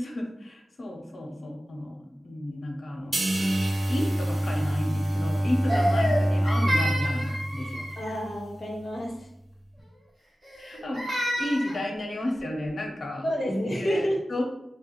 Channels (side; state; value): both; normal; correlation 0.96